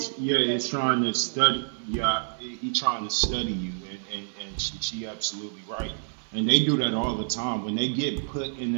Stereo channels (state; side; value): silent; left; digital silence